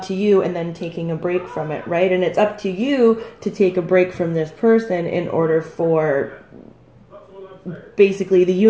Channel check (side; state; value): both; identical; correlation 1.00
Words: to you and then taking a break from it, right? And it's up to you to take a break from this person in order for basically the